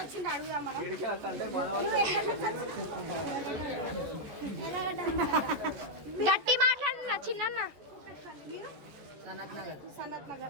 అడుగుదాం మనం. గట్టి మాట్లాడుతున్నా చిన్న.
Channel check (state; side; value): late; left; 14 ms